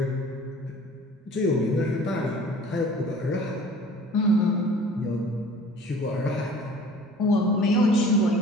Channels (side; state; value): both; normal; correlation 0.48